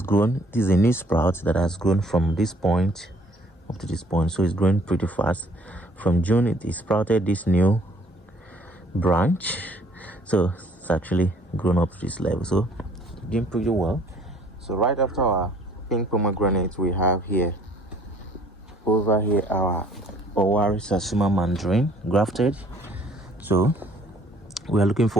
grown. This is a new sprout that has grown from this point up to this point, so it's growing pretty fast. From June it sprouted this new branch, so it's actually grown up to this level, so doing pretty well. So right after our pink pomegranate, we have here over here our Owari Sasuma mandarin grafted. So we are looking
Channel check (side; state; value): both; normal; correlation 0.58